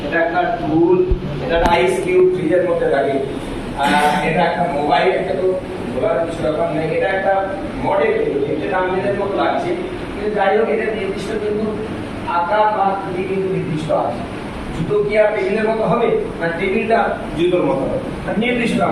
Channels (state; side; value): identical; both; correlation 1.00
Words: এটা একটা টুল, এটা আইস কিউব ফ্রিজের মধ্যে থাকে। এটা একটা মোবাইল, এটা তো বলার কিছু ব্যাপার নেই। এটা একটা মডেল, এটা আমাদের মতো লাগছে, কিন্তু যাই হোক এটা নির্দিষ্ট কিন্তু আকার বা আকৃতি কিন্তু নির্দিষ্ট আছে। জুতো কি আর টেবিলের মতো হবে, না টেবিলটা জুতোর মতো হবে, নির্দিষ্ট